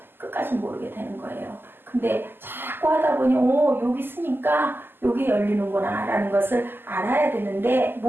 끝까지 모르게 되는 거예요. 근데 자꾸 하다 보니 여기 있으니까 여기 열리는구나 라는 것을 알아야 되는데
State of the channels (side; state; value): left; late; 0.098 ms